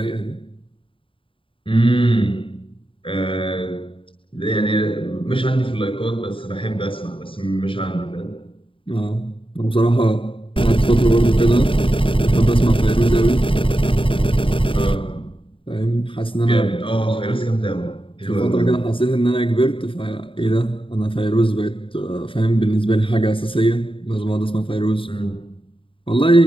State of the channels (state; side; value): late; right; 0.25 ms